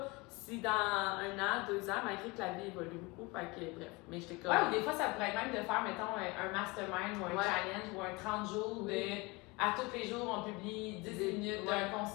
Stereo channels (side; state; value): right; quieter; 25.2 dB